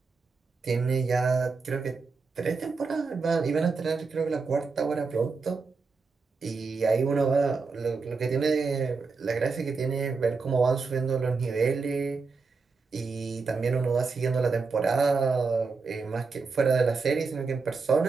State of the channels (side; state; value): left; quieter; 4.5 dB